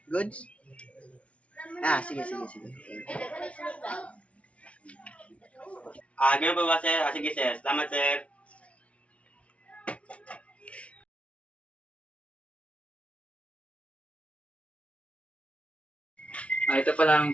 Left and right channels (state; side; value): late; right; 0.063 ms